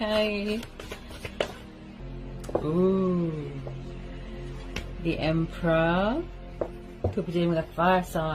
Ooh. The Emperor. Could be dealing with a fire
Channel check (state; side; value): identical; both; correlation 1.00